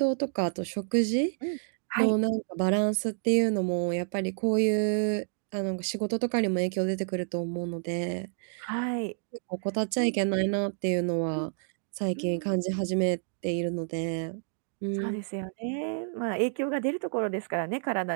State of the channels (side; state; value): left; silent; digital silence